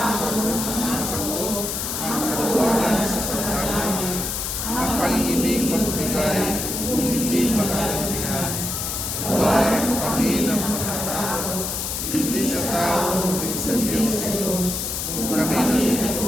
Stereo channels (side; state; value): left; noise; hiss, 3 dB below the sound